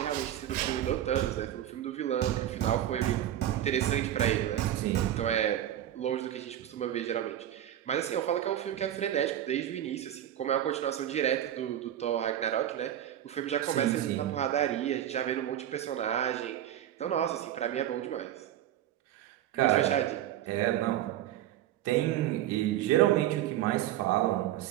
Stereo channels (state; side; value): quieter; left; 11.8 dB